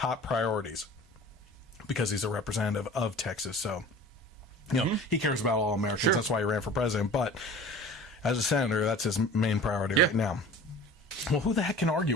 priorities. Because he's a representative of Texas, so he cares about all Americans. Sure. That's why he ran for president. But as a senator, that's his main priority right now. Well, who the heck can argue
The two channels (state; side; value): normal; both; correlation 0.41